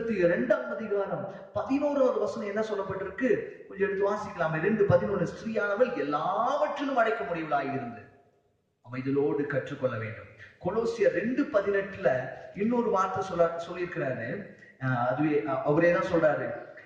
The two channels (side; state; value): both; identical; correlation 1.00